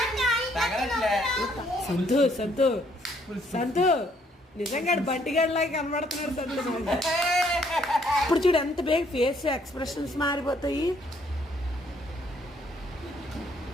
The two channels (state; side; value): normal; both; correlation 0.67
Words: సంతు సంతు సంతు నిజంగా బంటిగాడిలాగా కనబడుతున్నాడు సంతు. ఇప్పుడు చూడు ఎంత బేగ ఫేస్ ఎక్స్ప్రెషన్స్ మారిపోతాయి.